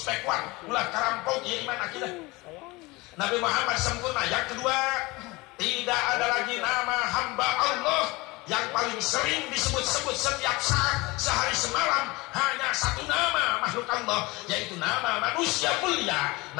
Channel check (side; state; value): right; quieter; 23.1 dB